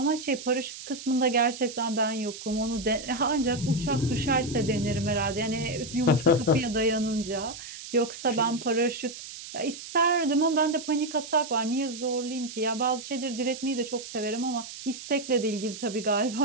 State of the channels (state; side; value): noise; right; hiss, 12 dB below the sound